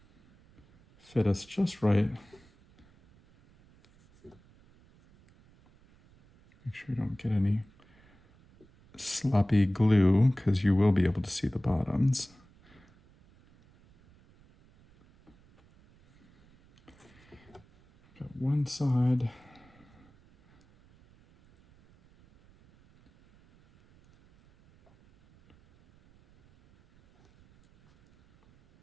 fit us just right. Make sure you don't get any sloppy glue, because you will be able to see the bottoms. Got one side.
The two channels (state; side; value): noise; right; rumble, 29 dB below the sound